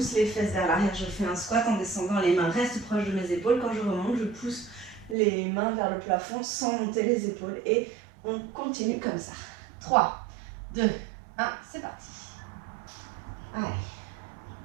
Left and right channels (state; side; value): drops out; left; at 5.2 s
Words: les fesses vers l'arrière, je fais un squat en descendant, les mains restent proches de mes épaules. Quand je remonte, je pousse les mains vers le plafond sans monter les épaules. Et on continue comme ça. 3, 2, 1, c'est parti. Allez.